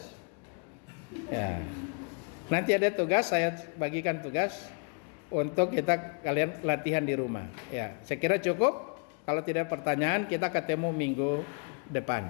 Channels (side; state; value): right; quieter; 38.2 dB